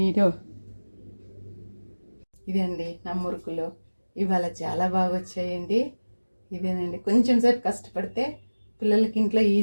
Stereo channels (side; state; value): both; inverted; correlation -1.00